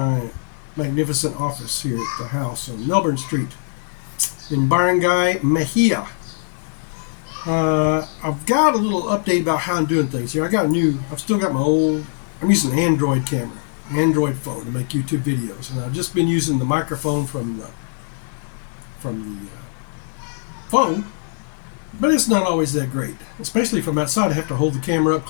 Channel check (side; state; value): right; silent; 63 dB below the other